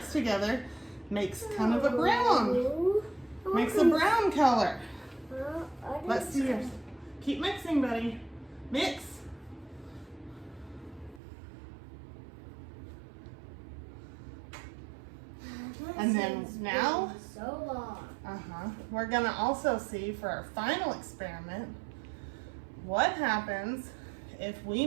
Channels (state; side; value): drops out; left; at 11.2 s